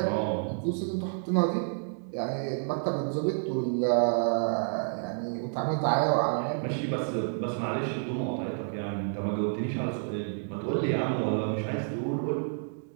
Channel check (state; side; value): silent; left; digital silence